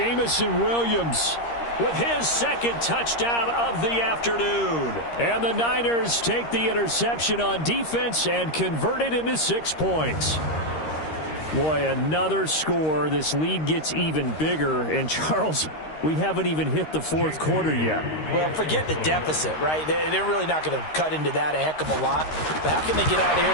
Williams with his second touchdown of the afternoon. And the Niners take the interception on defense and convert it into 6 points. Boy, another score. This lead gets even bigger. And, Charles, we haven't even hit the fourth quarter yet. Well, forget the deficit, right? They're really not going to cut into that a heck of a lot. But how can they get out of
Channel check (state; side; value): late; right; 13 ms